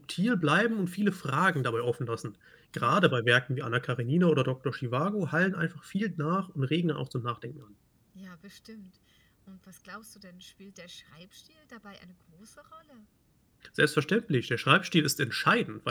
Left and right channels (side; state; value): both; identical; correlation 1.00